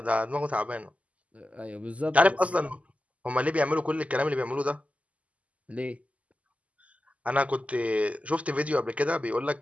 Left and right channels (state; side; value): late; left; 0.068 ms